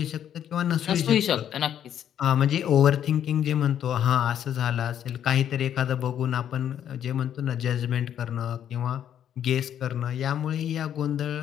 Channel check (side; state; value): right; quieter; 9.9 dB